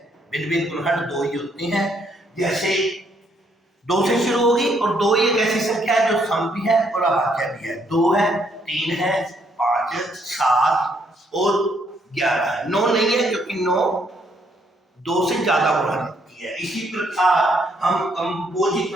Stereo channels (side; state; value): both; normal; correlation 0.71